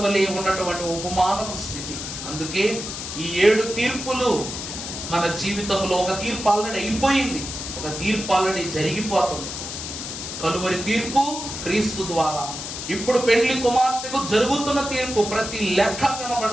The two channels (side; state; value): left; noise; hiss, 7 dB below the sound